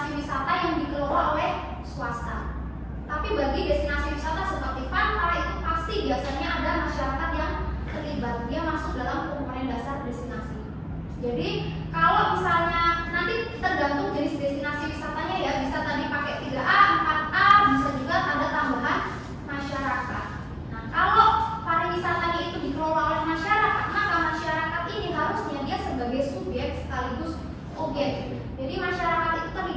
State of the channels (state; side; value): identical; both; correlation 1.00